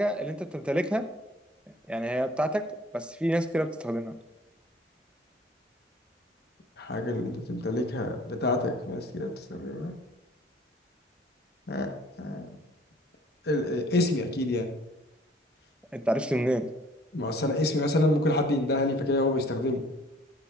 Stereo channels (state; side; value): normal; both; correlation 0.54